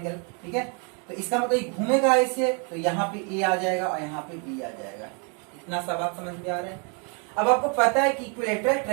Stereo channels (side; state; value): left; quieter; 37.3 dB